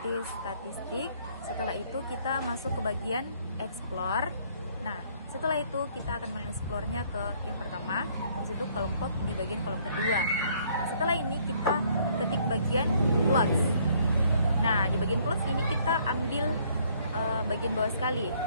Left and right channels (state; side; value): inverted; both; correlation -0.63